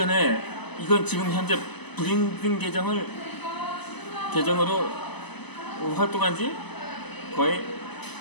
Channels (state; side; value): late; right; 0.99 ms